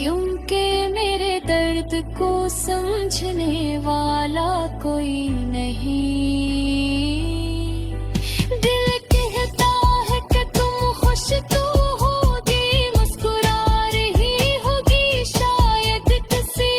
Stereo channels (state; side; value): identical; both; correlation 1.00